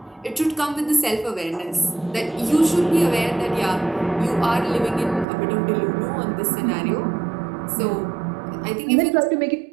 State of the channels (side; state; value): left; drops out; at 5.2 s